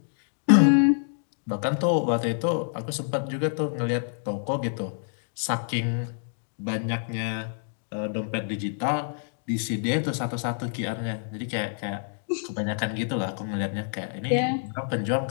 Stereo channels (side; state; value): right; silent; digital silence